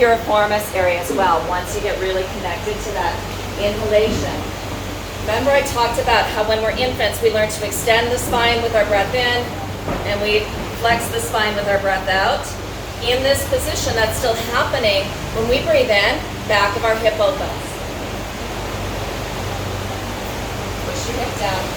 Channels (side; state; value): both; identical; correlation 1.00